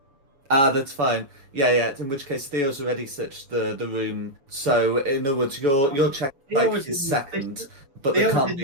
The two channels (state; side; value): late; left; 7.1 ms